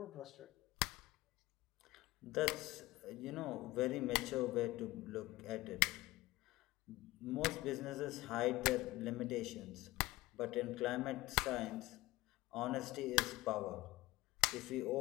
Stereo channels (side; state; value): right; quieter; 18.9 dB